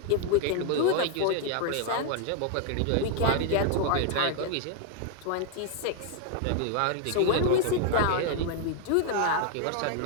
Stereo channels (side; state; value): both; different; correlation 0.00